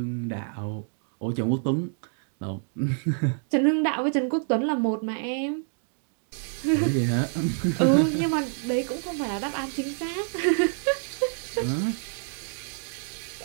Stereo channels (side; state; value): left; silent; 60 dB below the other